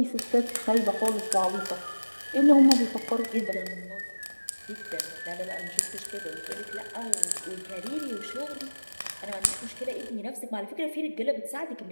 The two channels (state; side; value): inverted; both; correlation -1.00